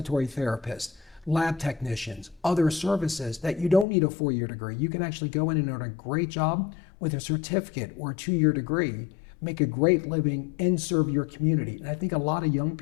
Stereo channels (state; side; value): drops out; right; at 3.9 s